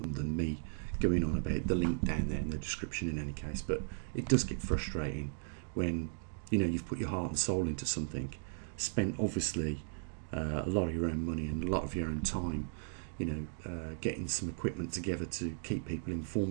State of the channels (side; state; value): left; silent; digital silence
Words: than me going on about the link down there in the description in any case. But it does get frustrating when you've put your heart and soul into something, spent obviously a lot of your own money and a lot of your own time, getting some equipment together to keep people